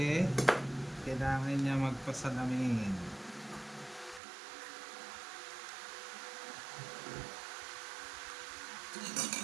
kailangan niya magpasalamin.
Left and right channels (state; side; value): drops out; left; at 4.2 s